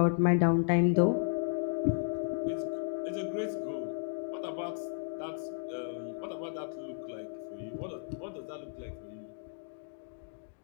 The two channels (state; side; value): silent; right; digital silence